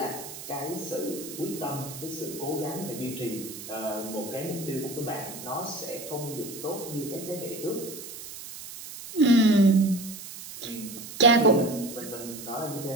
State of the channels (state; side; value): noise; right; hiss, 12 dB below the sound